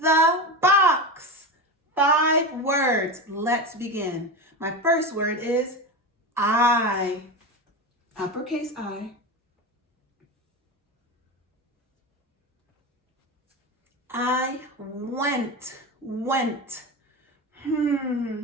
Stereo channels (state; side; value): normal; both; correlation 0.22